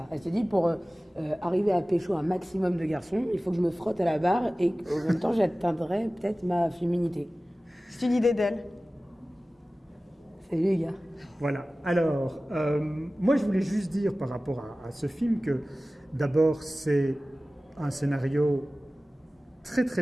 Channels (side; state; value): both; normal; correlation 0.97